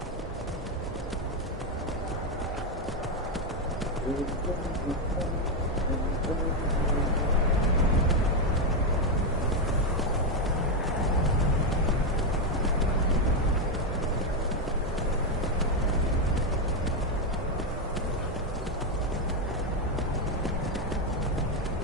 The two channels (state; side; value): normal; both; correlation 0.05